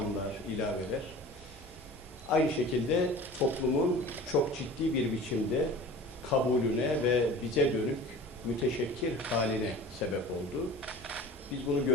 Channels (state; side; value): noise; left; hum, 30 dB below the sound